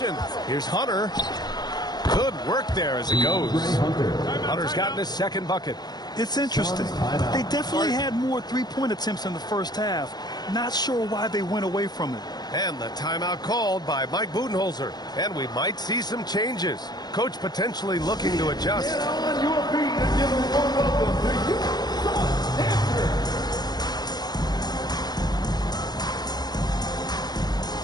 Here's Hunter. Good work there as it goes. Hunter's gotten his second bucket. It's interesting. They definitely had more three-point attempts in the first half. Not sure why they went away from it. And the timeout called by Mike Budenholzer. And we might see some changes. Coach potentially looking to adjust. Get on your feet and give them a welcome to you.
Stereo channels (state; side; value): late; right; 0.20 ms